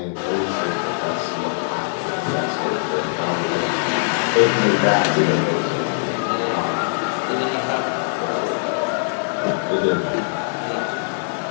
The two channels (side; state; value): right; silent; 62 dB below the other